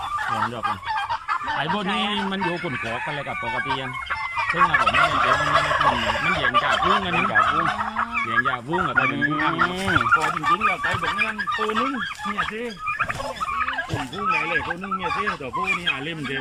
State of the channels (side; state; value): both; identical; correlation 1.00